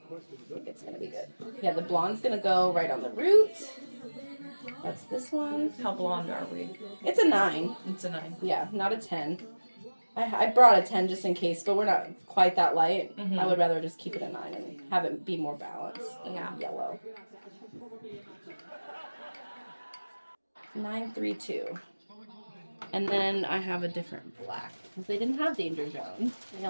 think it's going to be good. Yeah, the blonde's going to go right on the root. That's this one. How blonde are we? It's a 9. It's a 9. Yeah, not a 10. I brought a 10 just in case, but we're not quite that light. Mm-hmm. I would rather just keep it a 9 and have it be more balanced than yellow. 932. And then I have a different black. Because they didn't have Danger Zone. They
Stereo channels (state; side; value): inverted; both; correlation -1.00